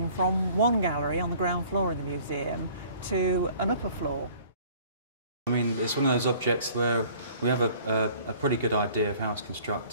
from one gallery on the ground floor in the museum to an upper floor. I mean, it's one of those objects where we have a pretty good idea of how it's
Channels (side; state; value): both; inverted; correlation -0.52